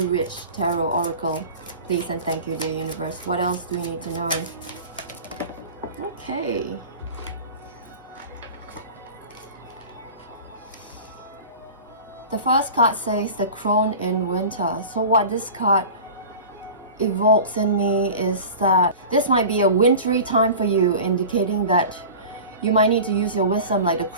Witch Tarot Oracle, please, and thank you, dear universe. What else do we need to know? Okay. The first card says the Crone in Winter. So what this card evokes in me is that this might be a wintry time for you, indicating that you might need to use your wisdom, like the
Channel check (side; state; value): both; inverted; correlation -0.36